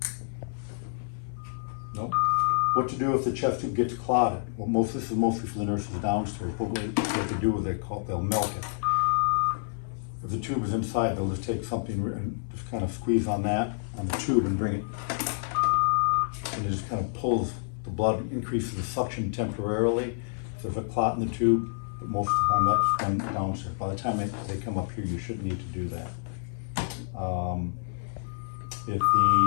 No? What to do if the chest tube gets clotted? Well, this is mostly for the nurses downstairs, but what they do is they'll milk it. If the tube is inside, they'll just take something and just kind of squeeze on the tube and bring it, and it just kind of pulls the blood, increases the suction temporarily. If there's a clot in the tube, but most of the time that's done downstairs. By the time they come up here, you shouldn't need to do that. If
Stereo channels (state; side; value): silent; right; 59 dB below the other